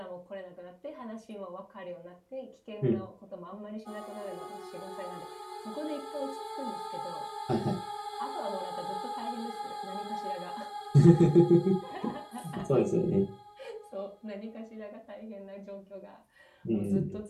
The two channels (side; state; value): both; identical; correlation 1.00